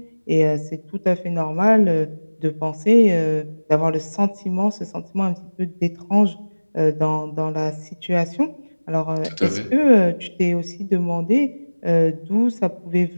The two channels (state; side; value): inverted; both; correlation -1.00